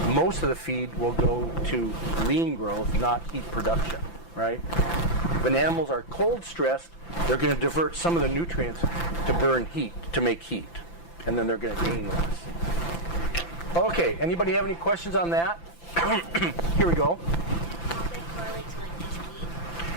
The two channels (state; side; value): late; right; 5.9 ms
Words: most of the feed will go to lean growth, not heat production, right? When animals are cold stressed, they're going to divert some of the nutrients to burn heat, to make heat. And then they're going to gain less. Okay, anybody have any questions on that? Here we go.